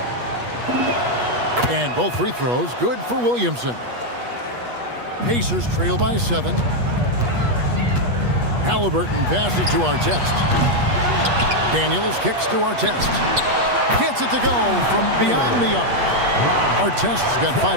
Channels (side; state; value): left; late; 8.3 ms